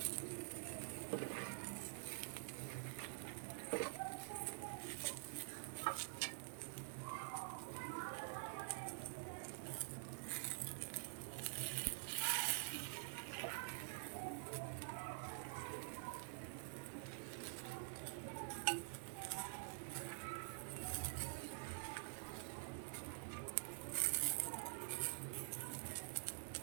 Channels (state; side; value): silent; left; digital silence